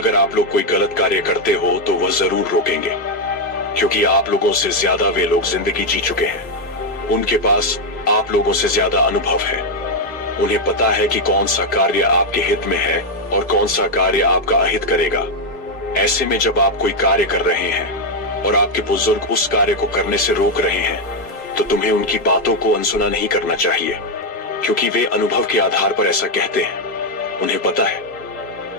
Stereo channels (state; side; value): normal; both; correlation 0.03